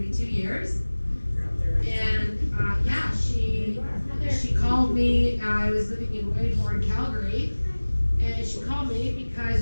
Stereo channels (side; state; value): both; inverted; correlation -1.00